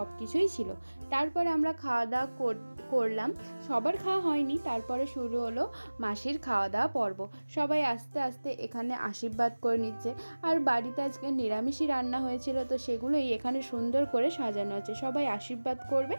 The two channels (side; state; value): both; inverted; correlation -1.00